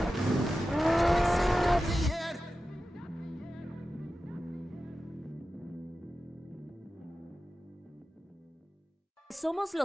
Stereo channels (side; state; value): both; normal; correlation 0.93